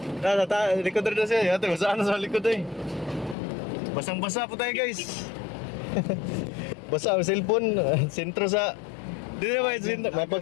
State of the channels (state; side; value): drops out; right; at 3.4 s